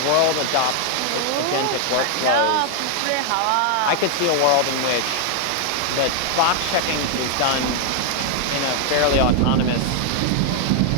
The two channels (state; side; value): different; both; correlation 0.00